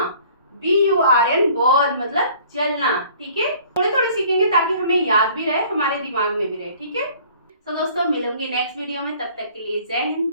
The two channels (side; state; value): both; inverted; correlation -0.53